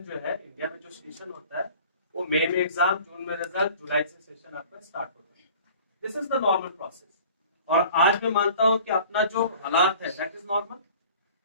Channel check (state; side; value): inverted; both; correlation -0.47